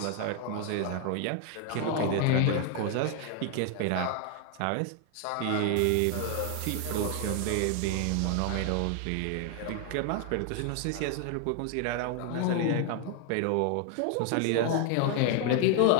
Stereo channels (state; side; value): different; both; correlation 0.00